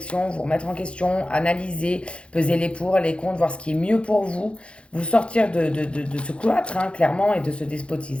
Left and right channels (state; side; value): late; right; 0.059 ms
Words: vous remettre en question, analyser, peser les pour, les contre, voir ce qui est mieux pour vous, vous sortir de ce cloître, hein, clairement, et de ce